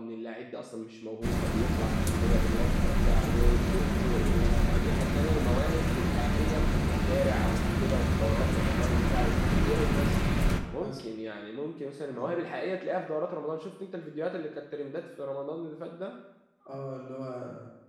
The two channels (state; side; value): identical; both; correlation 1.00